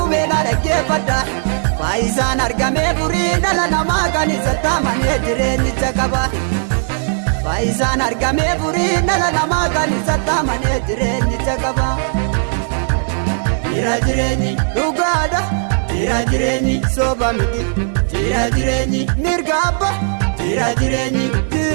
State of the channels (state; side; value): silent; left; digital silence